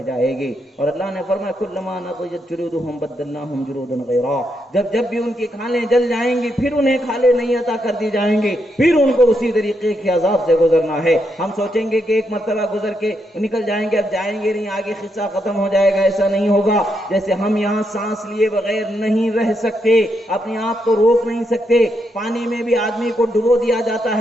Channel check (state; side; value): normal; both; correlation 0.80